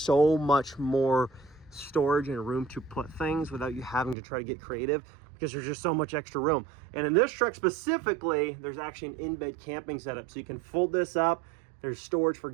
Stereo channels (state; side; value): drops out; left; at 4.2 s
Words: much more storage and room to put things without you having to try to get creative, because there's just so much extra room. And in this truck specifically, there's actually an in-bed camping setup. So you can fold this up. There's storage for